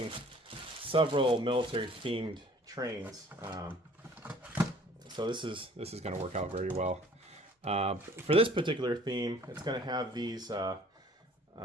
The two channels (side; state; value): both; normal; correlation 0.53